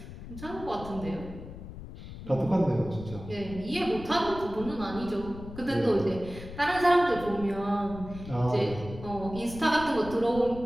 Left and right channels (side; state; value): left; noise; rumble, 13 dB below the sound